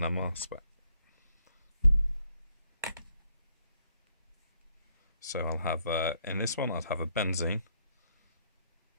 spec. So I'll have, in this one, I'd have a benzene.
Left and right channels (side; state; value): both; inverted; correlation -0.71